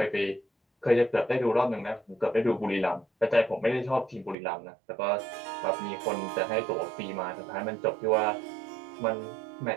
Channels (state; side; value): drops out; left; at 4.4 s